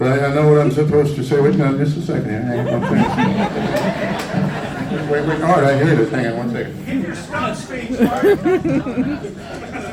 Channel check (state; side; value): identical; both; correlation 1.00